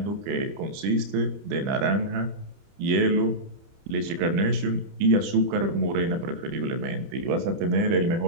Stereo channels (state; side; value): late; left; 30 ms